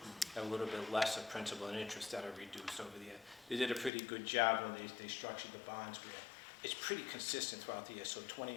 a little bit less of principal and interest that are reduced over the year. They did a pretty good job when they structured the bonds where it's pretty consistent throughout the year. So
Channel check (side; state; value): right; drops out; at 3.9 s